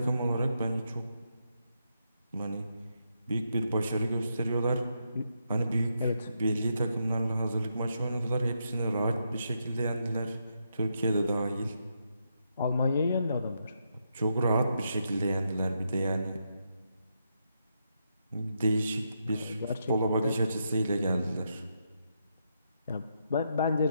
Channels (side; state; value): both; inverted; correlation -0.81